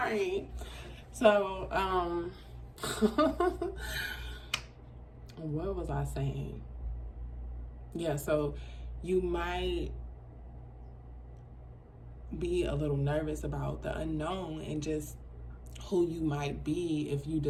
So, what was I saying? Yeah, so you might be a little nervous about the unknown and just who you might be if you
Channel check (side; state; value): both; identical; correlation 1.00